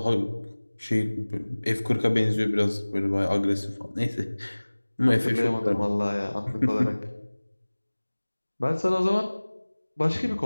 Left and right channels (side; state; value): both; inverted; correlation -1.00